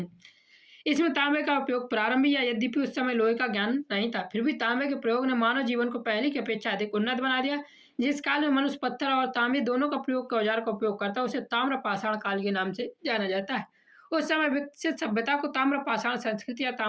इसमें तांबे का उपयोग प्रारंभ या यद्यपि उस समय लोहे का ज्ञान नहीं था, फिर भी तांबे के प्रयोग ने मानव जीवन को पहले की अपेक्षा अधिक उन्नत बना दिया। जिस काल में मनुष्य पत्थर और तांबे दोनों का प्रयोग के औजार का उपयोग करता है उसे ताम्र पाषाण काल के नाम से जाना जाता है। उस समय विकसित सभ्यता को ताम्र पाषाण संस्कृति या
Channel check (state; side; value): identical; both; correlation 1.00